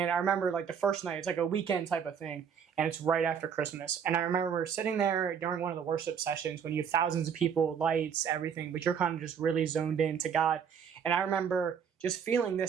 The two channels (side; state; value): left; quieter; 7.4 dB